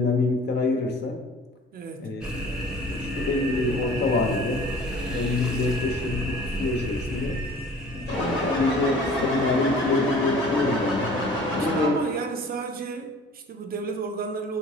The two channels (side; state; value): both; normal; correlation 0.47